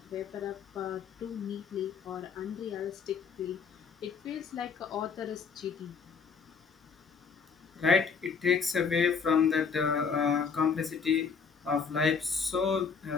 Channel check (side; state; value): right; quieter; 5.7 dB